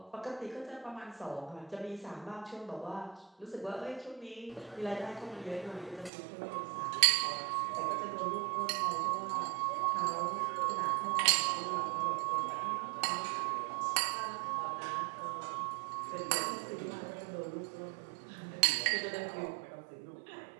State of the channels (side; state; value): left; drops out; at 6.1 s